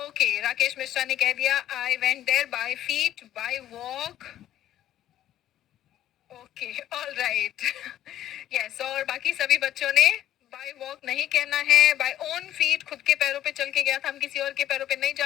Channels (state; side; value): quieter; right; 12.2 dB